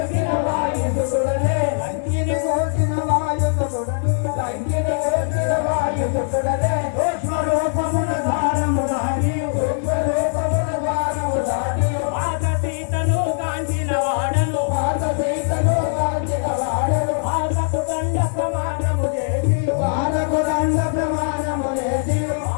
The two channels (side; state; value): right; silent; 65 dB below the other